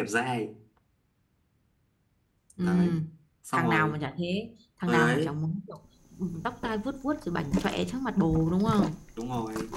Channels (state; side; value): identical; both; correlation 1.00